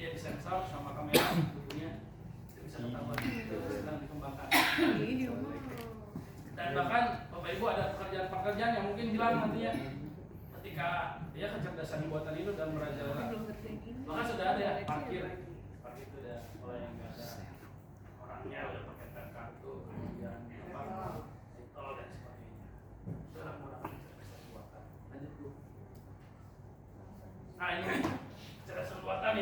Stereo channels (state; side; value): identical; both; correlation 1.00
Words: disensor sama kamera tubuhnya, itu bisa ketahuan, itu sedang dikembangkan. Dan bahkan Bapak Ibu ada pekerjaan-pekerjaan yang mungkin hilang nantinya ketika dia kecerdasan buatan itu dan merajalela. Bahkan sudah ada ya parkir itu udah mulai yang nggak ada orangnya, udah pakai tap kartu, kemudian tol dan sebagainya. Sudah menggunakan kecerdasan buatan. Lanjut dulu. Nah ini kecerdasan buatan